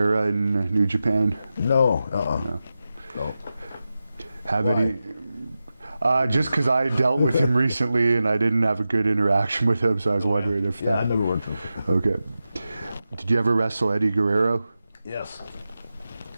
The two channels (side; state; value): both; inverted; correlation -0.93